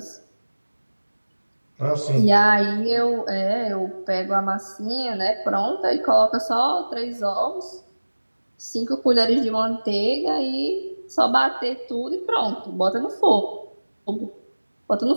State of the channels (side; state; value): both; inverted; correlation -1.00